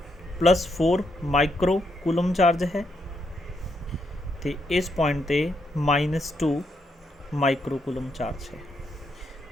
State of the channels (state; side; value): normal; both; correlation 0.78